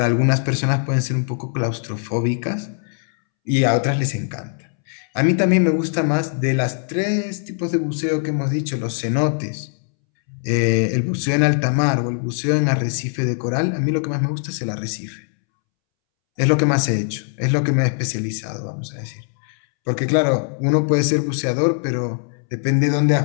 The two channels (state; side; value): silent; right; 65 dB below the other